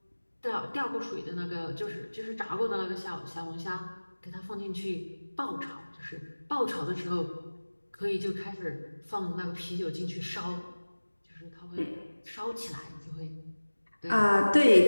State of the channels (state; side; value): inverted; both; correlation -1.00